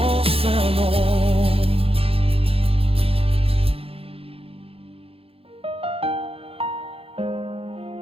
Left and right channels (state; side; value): late; left; 0.27 ms